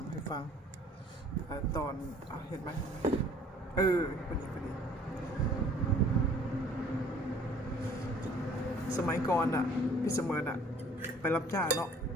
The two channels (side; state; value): both; normal; correlation 0.54